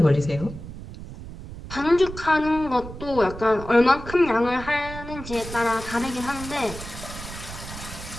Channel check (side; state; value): right; noise; rumble, 12 dB below the sound